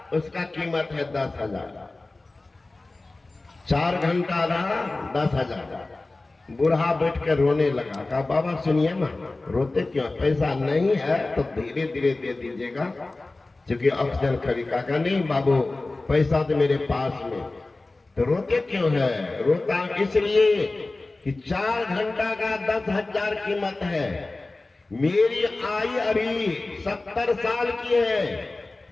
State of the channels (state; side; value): quieter; right; 3.1 dB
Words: उसका कीमत है 10,000। 4 घंटा रहा 10,000। बूढ़ा बैठ कर रोने लगा। कहा बाबा सुनिए ना, रोते क्यों, पैसा नहीं है तो धीरे धीरे दे दीजिएगा, क्योंकि ऑक्सीजन खरीदा। कहा नहीं बाबू पैसा तो मेरे पास में। तो रोते क्यों है, रोता इसलिए कि 4 घंटा का 10,000 कीमत है। मेरी आयु अभी 70 साल की है